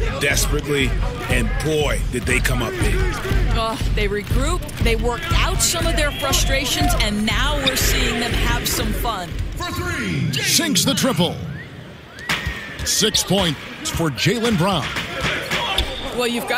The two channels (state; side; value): identical; both; correlation 1.00